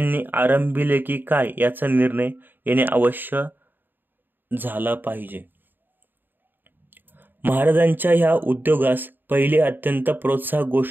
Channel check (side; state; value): left; late; 0.093 ms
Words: आरंभिले की काय याचा निर्णय येणे अवश्य झाला पाहिजे. महाराजांच्या ह्या उद्योगास पहिली अत्यंत प्रोत्साहक